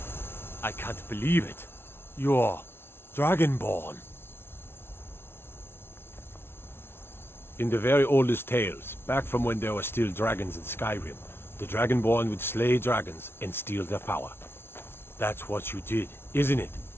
I can't believe it. You're Dragonborn. In the very oldest tales, back from when there were still dragons in Skyrim, the Dragonborn would slay dragons and steal their power. That's what you did, isn't it?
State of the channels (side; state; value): right; late; 0.12 ms